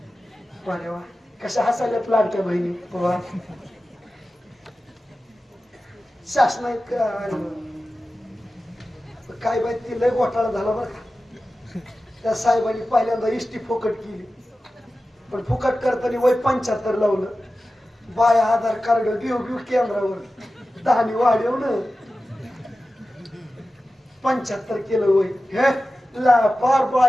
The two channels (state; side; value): normal; both; correlation 0.95